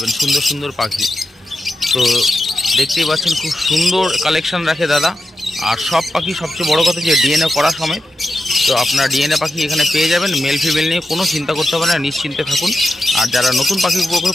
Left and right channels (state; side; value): normal; both; correlation 0.89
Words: সুন্দর সুন্দর পাখি। তো দেখতেই পাচ্ছেন খুব সুন্দর কালেকশন রাখে দাদা, আর সব পাখি সবচেয়ে বড় কথা যে ডিএনএ করা সমেত। তো আপনারা ডিএনএ পাখি এখানে পেয়ে যাবেন, মেল ফিমেল নিয়ে কোনো চিন্তা করতে হবে না, নিশ্চিন্তে থাকুন। আর যারা নতুন পাখি